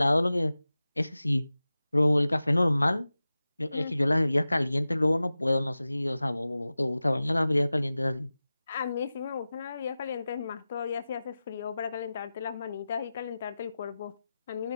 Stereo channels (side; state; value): both; inverted; correlation -0.96